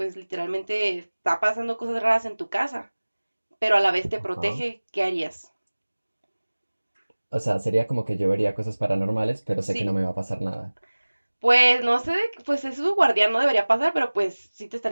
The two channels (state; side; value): inverted; both; correlation -1.00